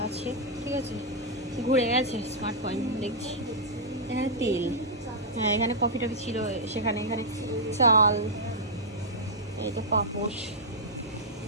আছে, ঠিক আছে ঘুরে গেছে স্মার্ট পয়েন্ট, দেখছি এখানে তেল, হ্যাঁ এখানে কফি টফি ছিল সেখানে, এখানে চাল, এই তো পাপোশ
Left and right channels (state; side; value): normal; both; correlation -0.08